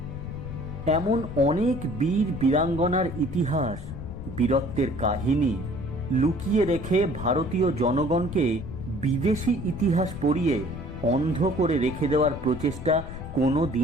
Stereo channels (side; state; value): left; noise; rumble, 10 dB below the sound